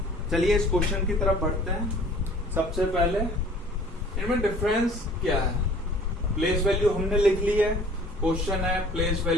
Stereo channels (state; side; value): normal; both; correlation 0.50